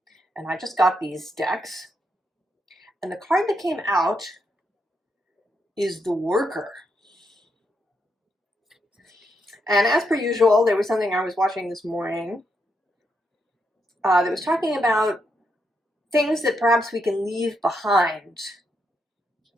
And I just got these decks. And the card that came out is the Worker. And as per usual, there was something I was watching this morning that was talking about things that perhaps we can leave behind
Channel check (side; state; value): both; normal; correlation 0.80